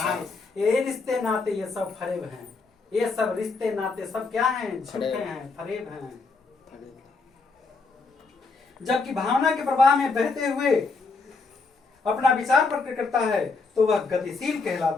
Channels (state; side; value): quieter; right; 4.2 dB